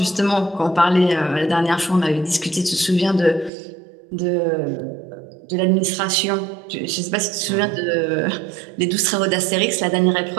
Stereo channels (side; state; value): left; drops out; at 3.5 s